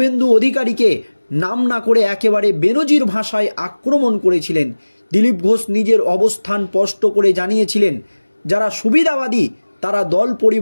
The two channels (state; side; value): inverted; both; correlation -1.00